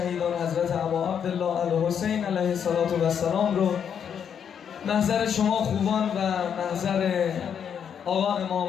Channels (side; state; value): right; quieter; 8.0 dB